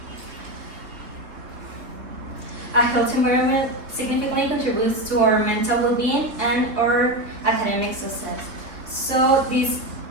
significantly contributes to our mental well-being and our academic success. So these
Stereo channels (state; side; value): late; left; 3.3 ms